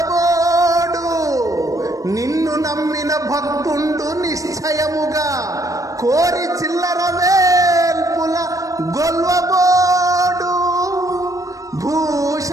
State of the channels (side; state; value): left; late; 0.16 ms